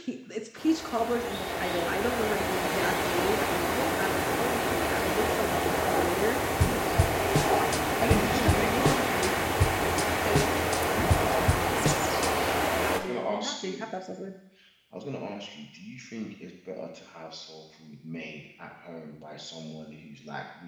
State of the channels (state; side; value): identical; both; correlation 1.00